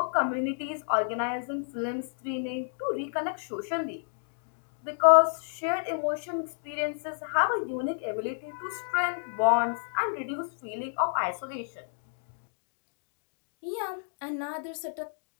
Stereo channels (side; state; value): right; silent; digital silence